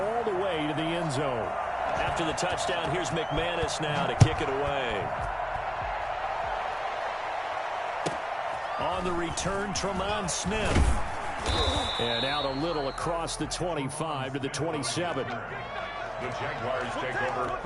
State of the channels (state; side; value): identical; both; correlation 1.00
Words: the way to the end zone. After the touchdown, here's McManus now to kick it away. On the return, Tremont Smith. And out a little across the 25 to the 27. The Jaguars take over